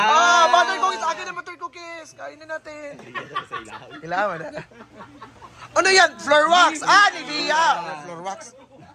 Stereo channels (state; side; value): identical; both; correlation 1.00